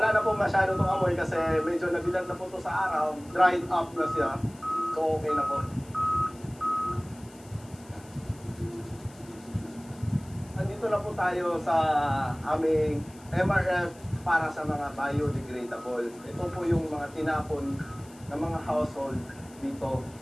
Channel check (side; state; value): left; noise; hiss, 24 dB below the sound